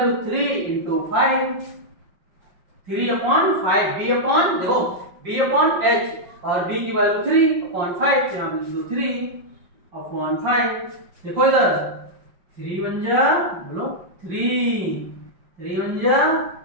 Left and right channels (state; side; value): late; left; 5.5 ms